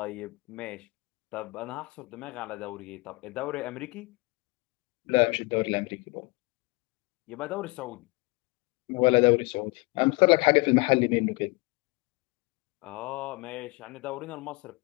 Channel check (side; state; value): right; quieter; 26.8 dB